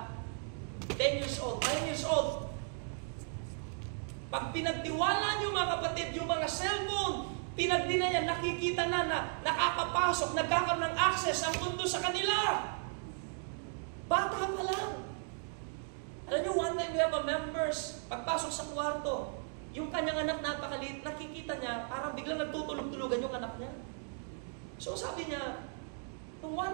10 years old, 9 years old, pag pinagtiwala nyo mga kapatid, yung mga cellphone, pinagdina niya, nakikita na nakakapasok, nagkakaroon ng access ang mundo sa kanila. Bata pa lang. Alam niyo, one time we have a members, pagpasok sa kwarto, Yung kanyang anak napakaliit, nakikita niya, parang biglang nagtutulog-tulugan yung anak niya. So sabi niya, nung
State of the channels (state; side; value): silent; left; 54 dB below the other